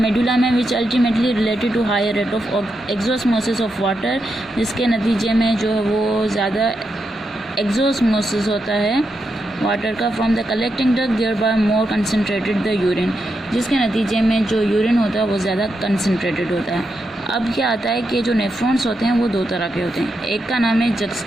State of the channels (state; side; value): normal; both; correlation 0.85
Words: में which ultimately related to higher rate of exosmosis of water, जिसके नतीजे में जो है वो ज़्यादा एक्सोस्मोसिस होता है वाटर का from the collecting duct thereby more concentrated the urine, जिसके नतीजे में जो यूरिन होता है वो ज़्यादा कंसनट्रेटेड होता है। अब क्या आता है कि जो नेफ्रॉन्स होते हैं वो दो तरह के होते हैं। एक का नाम है